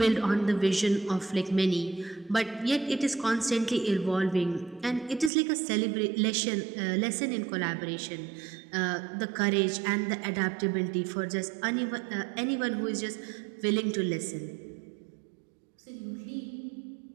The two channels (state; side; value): drops out; left; at 5.3 s